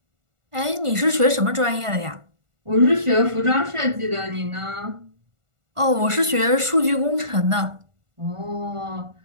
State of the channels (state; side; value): late; left; 1.4 ms